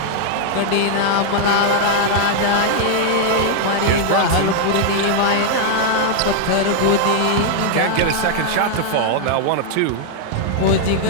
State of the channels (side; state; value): both; different; correlation 0.00